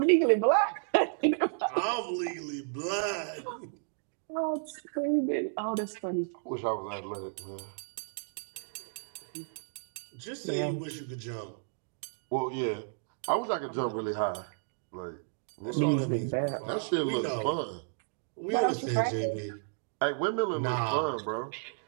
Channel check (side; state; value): left; silent; digital silence